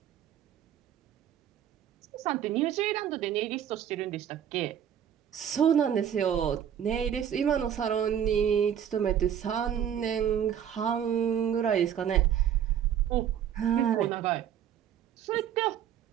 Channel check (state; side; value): quieter; left; 9.5 dB